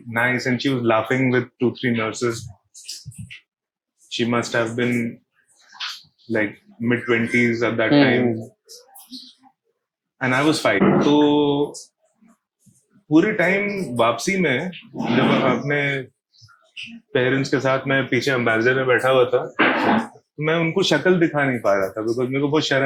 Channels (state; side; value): identical; both; correlation 1.00